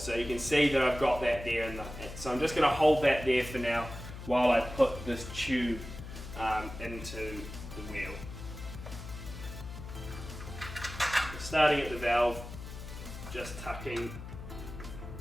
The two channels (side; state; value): left; noise; hum, 11 dB below the sound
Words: So you can see that I've got that there. So I'm just going to hold that there for now while I put this tube into the wheel. Starting at the valve, just tucking